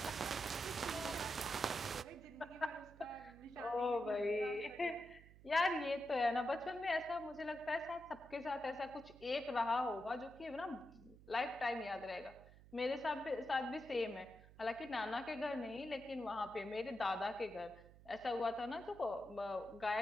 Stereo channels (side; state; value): right; noise; hum, 20 dB below the sound